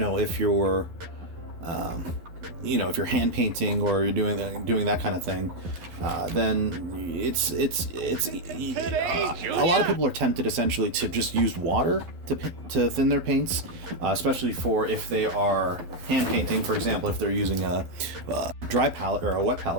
you're if you're hand painting or you're doing that kind of thing, then it's a lot of people are tempted essentially to just use water to thin their paints, especially for if they are hand painting, for example, if they're using a dry palette or a wet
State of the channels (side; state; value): left; late; 12 ms